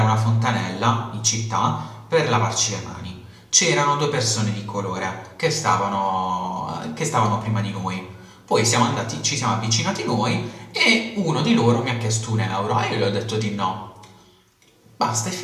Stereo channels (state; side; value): identical; both; correlation 1.00